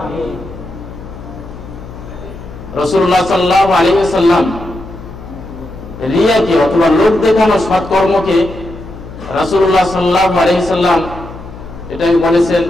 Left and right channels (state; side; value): noise; left; hum, 14 dB below the sound